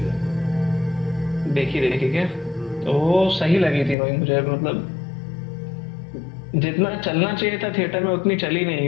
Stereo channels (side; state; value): right; drops out; at 4.0 s